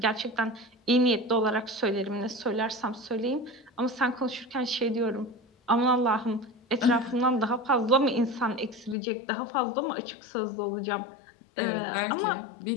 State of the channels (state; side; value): drops out; right; at 9.0 s